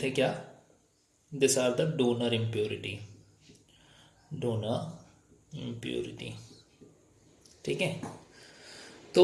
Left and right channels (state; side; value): identical; both; correlation 1.00